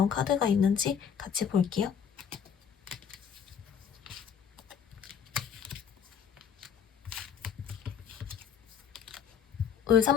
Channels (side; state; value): right; quieter; 7.6 dB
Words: 카드가 있는지 같이 볼게요. 울